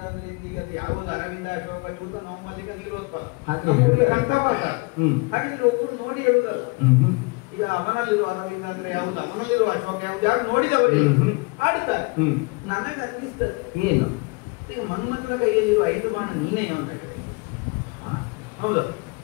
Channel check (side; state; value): right; quieter; 28.9 dB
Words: ಅಂದ್ರೆ ಈಗ ಯಾವುದು ಅರವಿಂದ, ಅಶೋಕ, ಚೂತ, ಮೊಹಮ್ಮದಿಕ, ನೀಲೋತ್ಪಲ ಕಂಠಪಾಠ. ಹಾಗಿದ್ರೆ ಒಬ್ಬರು ನೋಡಿ ಹೇಳುದಲ್ಲ. ಈಗ ಅವನಲ್ಲಿರುವ ಅರವಿಂದ ಅಂದ್ರೆ ಯಾವುದು, ಅವನಲ್ಲಿರುವ ಅಶೋಕ ಯಾವುದು, ಯಾರು ನೋಡಿದವರು ಆಡ್ತಾರೆ. ನನಗೆ ಅನ್ನಿಸ್ತದೆ ಏನು, ಈಗ ಮನ್ಮಥನ ಕೈಯಲ್ಲಿರುವ 5 ಬಾಣ ನೀನೇ ಅಂತ ಹೇಳಿ. ಹೌದಾ,